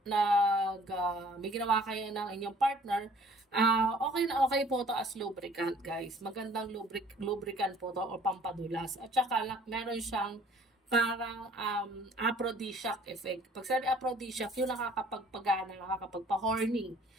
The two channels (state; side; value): normal; both; correlation 0.54